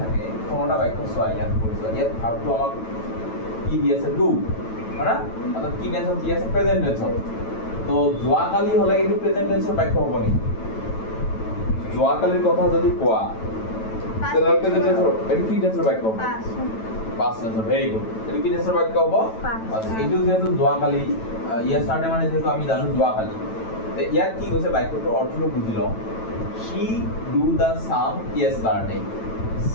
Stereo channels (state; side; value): late; right; 9.1 ms